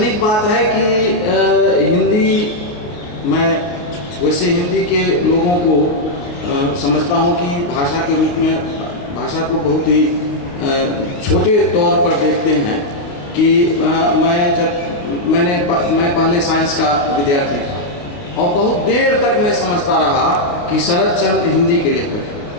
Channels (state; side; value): late; right; 28 ms